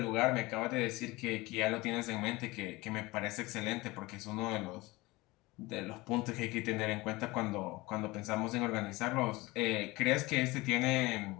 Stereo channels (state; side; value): quieter; right; 21.7 dB